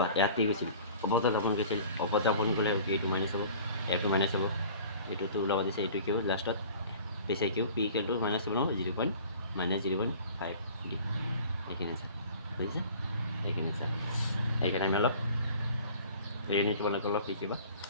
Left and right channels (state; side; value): inverted; both; correlation -0.46